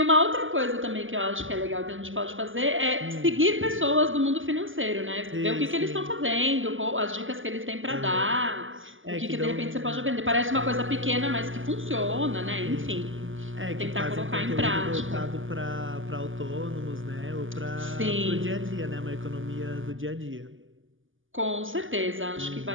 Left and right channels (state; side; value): late; left; 0.58 ms